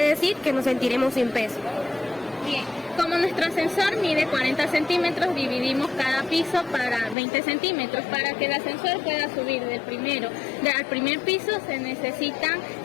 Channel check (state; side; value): drops out; right; at 7.2 s